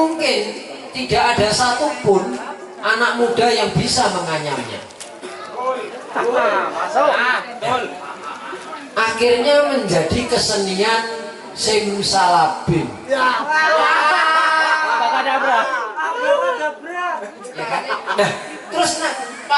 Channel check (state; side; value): identical; both; correlation 1.00